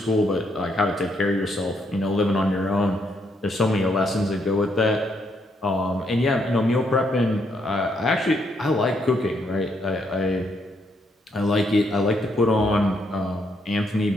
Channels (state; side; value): normal; both; correlation 0.75